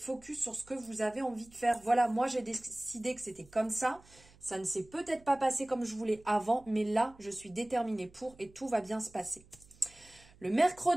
sur ce que vous avez envie de faire. Voilà, moi j'ai décidé que c'était comme ça, Ça ne s'est peut-être pas passé comme je voulais avant, mais là, je suis déterminée pour et tout va bien se passer. Le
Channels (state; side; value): noise; right; hum, 26 dB below the sound